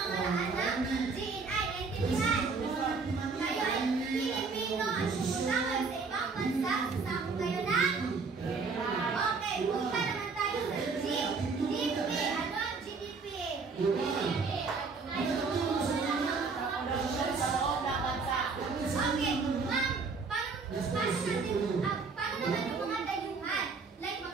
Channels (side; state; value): left; quieter; 4.6 dB